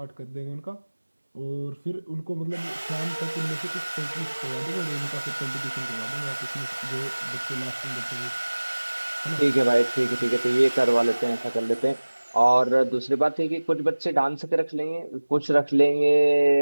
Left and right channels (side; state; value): both; inverted; correlation -1.00